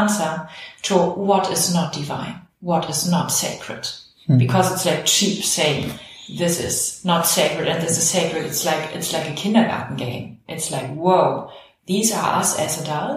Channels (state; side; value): identical; both; correlation 1.00